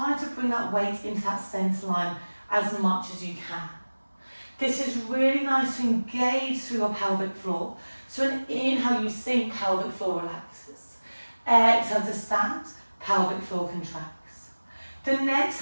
to bring that weight into that centre line as much as you can. This is really nice to engage through your pelvic floor. So an inhale, you sink, pelvic floor relaxes. Exhale to stand, pelvic floor contracts. The next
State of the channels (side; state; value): both; inverted; correlation -1.00